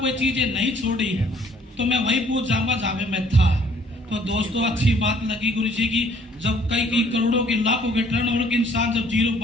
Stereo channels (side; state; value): both; normal; correlation 0.60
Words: कोई चीजें नहीं छोड़ी तो मैं वही पूछ जाऊंगा जहां पे मैं था। तो दोस्तों, अच्छी बात लगी गुरु जी की, जब कई करोड़ों के लाखों के टर्नओवर के इंसान जब जीरो